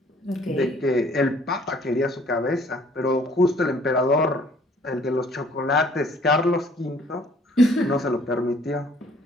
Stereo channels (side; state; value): both; normal; correlation 0.58